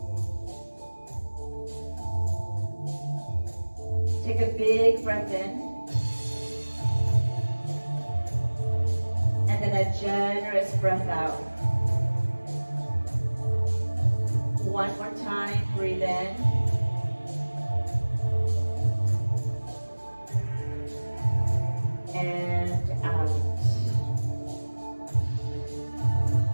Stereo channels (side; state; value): both; inverted; correlation -1.00